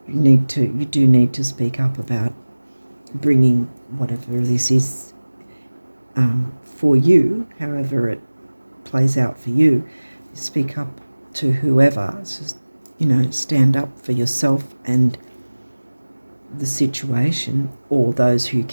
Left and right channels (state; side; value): inverted; both; correlation -1.00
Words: you do need to speak up about bringing whatever this is for you, however it plays out for you. Speak up to whoever. Just, you know, stand up for yourself and the situation, or those who